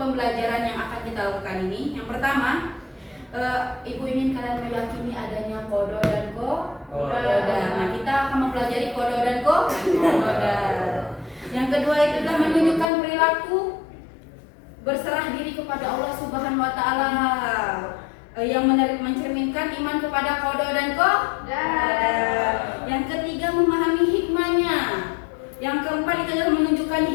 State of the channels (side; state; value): right; drops out; at 12.9 s